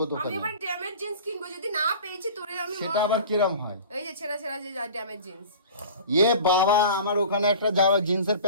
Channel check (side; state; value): both; inverted; correlation -0.40